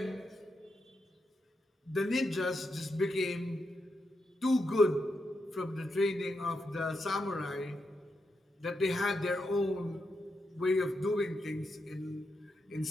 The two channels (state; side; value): normal; both; correlation 0.84